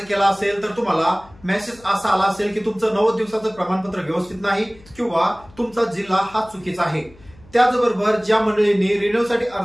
केला असेल तर तुम्हाला मेसेज असा आला असेल की तुमचं 90 दिवसाचं प्रमाणपत्र व्यवस्थित नाही किंवा तुमचा जिल्हा हा चुकीचा आहे। त्याचबरोबर ज्या मंडळींनी रिन्युअलसाठी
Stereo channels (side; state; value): left; noise; hum, 25 dB below the sound